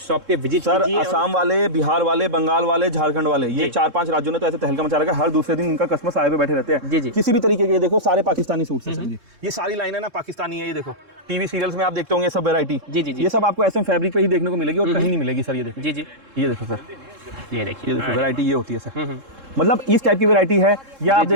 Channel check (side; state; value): left; late; 3.7 ms